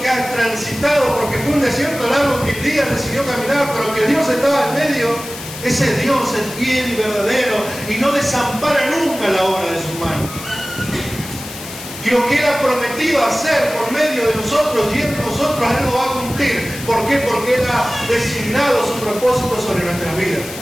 has transitado, porque fue un desierto largo que Elías decidió caminar, pero que Dios estaba en medio, ese Dios es fiel y verdadero y no desampara nunca la obra de sus manos. Y lo que Él ha prometido hacer por medio de nosotros y en nosotros, Él lo va a cumplir. ¿Por qué? Porque Él ha designado su propósito sobre nuestras vidas.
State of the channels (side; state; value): left; noise; hiss, 12 dB below the sound